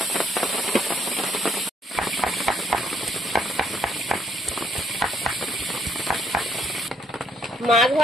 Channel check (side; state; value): both; normal; correlation 0.70